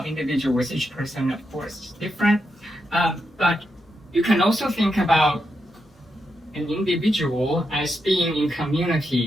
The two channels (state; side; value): normal; both; correlation 0.84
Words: individuals. Each person, of course, is different. But you can also think about an individual as being in community